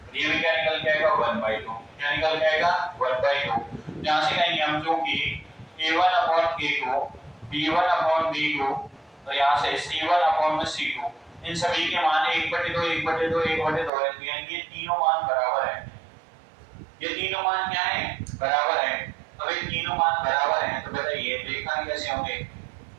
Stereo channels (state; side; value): drops out; left; at 13.9 s